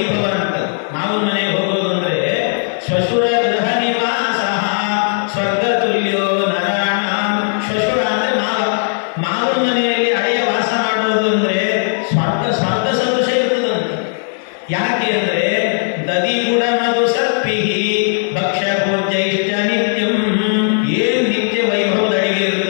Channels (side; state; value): right; silent; 68 dB below the other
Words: ಅಂತ. ಮಾವನ ಮನೆಗೆ ಹೋಗೋದು ಅಂದ್ರೆ ಶ್ವಶುರ ಗೃಹ ನಿವಾಸ ಸ್ವರ್ಗತುಲ್ಯೋ ನರಾಣಾಂ. ಶ್ವಶುರ ಅಂದ್ರೆ ಮಾವನ ಮನೆಯಲ್ಲಿ ಅಳಿಯ ವಾಸ ಮಾಡೋದು ಅಂದ್ರೆ ಸ್ವರ್ಗ ಸದೃಶ ಇರ್ತದಂತೆ. ಯಾಕೆ ಅಂದ್ರೆ ದದಿ ಗುಡ ಮಧು ಸರ್ಪಿಹಿ ಭಕ್ಷ್ಯ ಭೋಜ್ಯೈಶ್ಚ ನಿತ್ಯಂ. ಏನ್ ನಿತ್ಯ ವೈಭವದ ಅಡಿಗೆ